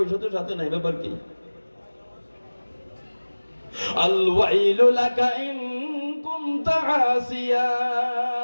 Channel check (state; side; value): inverted; both; correlation -1.00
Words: তো সাথে নাই। ব্যাপার কি? আল ওয়াইলু লাকা ইন কুনতা আসিয়া,